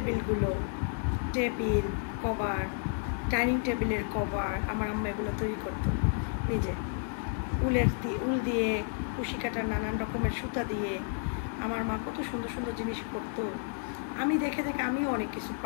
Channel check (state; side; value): silent; right; 57 dB below the other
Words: টেবিল কভার, ডাইনিং টেবিলের কভার আমার আম্মা এগুলো তৈরি করতো নিজে, উল দিয়ে, কুশি কাটার নানান রকমের সুতা দিয়ে। আমার মা কত সুন্দর সুন্দর জিনিস করতো, আমি দেখে দেখে আমিও অনেক কিছু